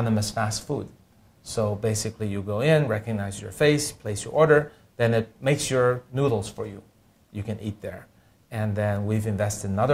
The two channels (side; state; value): both; identical; correlation 1.00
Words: fast food. So basically you go in, recognize your face, place your order, then it makes your noodles for you. You can eat there. And then we've invested in